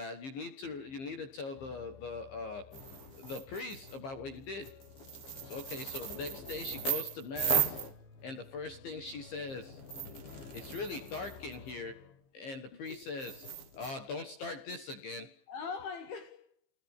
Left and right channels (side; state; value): right; late; 15 ms